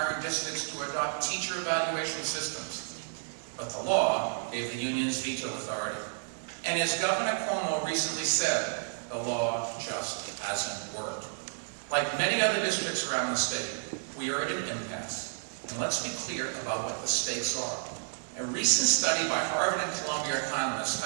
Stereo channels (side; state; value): left; silent; 57 dB below the other